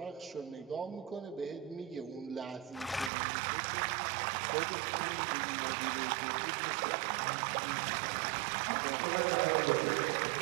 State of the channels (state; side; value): drops out; left; at 3.1 s